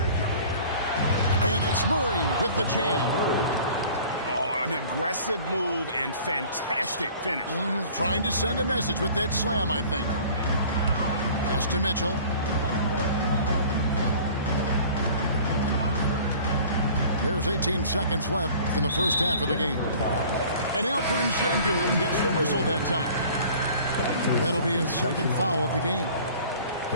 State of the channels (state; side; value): inverted; both; correlation -0.47